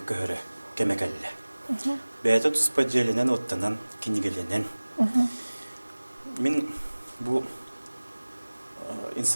көрі кәмәкәлі. Бәйті тұспа желінен оттанан кенегеленен. Мен бұл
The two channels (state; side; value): inverted; both; correlation -1.00